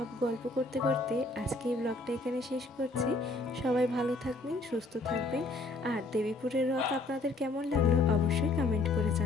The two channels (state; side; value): quieter; right; 3.2 dB